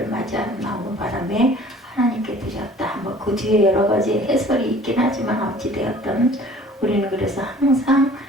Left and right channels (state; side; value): normal; both; correlation 0.50